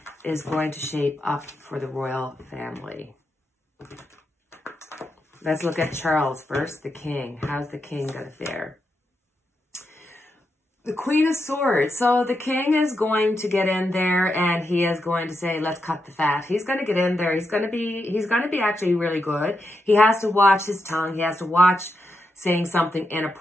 is going to shape up for the royal family. Let's look at Charles first, the king. How's the king going to fare? The Queen of Swords. So the king is going to get in there and he is going to say, let's cut the fat. He's going to get in there. He's going to be actually really good. He has to watch his tongue. He has to watch saying something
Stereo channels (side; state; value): both; normal; correlation 0.84